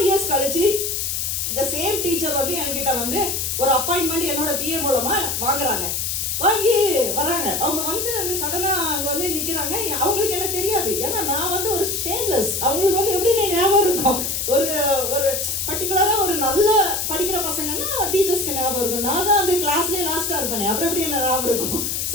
years கழிச்சு இந்த சேம் டீச்சர் வந்து என்கிட்ட வந்து ஒரு அப்பாயின்மெண்ட் என்னோட பிஏ மூலமா வாங்கி வராங்க. அவங்க வந்து அங்க சடனா அங்க வந்து நிக்கிறாங்க. அவங்களுக்கு என்ன தெரியாது, ஏன்னா நான் வந்து ஒரு ஷேம்லெஸ். அவங்களுக்கு வந்து எப்படி ஞாபகம் இருக்கும், ஒரு பர்டிகுலரா ஒரு நல்ல படிக்கிற பசங்கன்னா டீச்சர்ஸ்க்கு ஞாபகம் இருக்கும். நான் தான் அந்த கிளாஸ்லயே லாஸ்டா இருப்பேன், அப்புறம் எப்படி என்ன ஞாபகம் இருக்கும்.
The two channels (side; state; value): left; noise; hiss, 1 dB below the sound